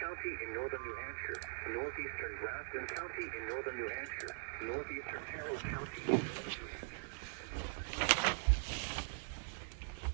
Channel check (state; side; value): silent; left; digital silence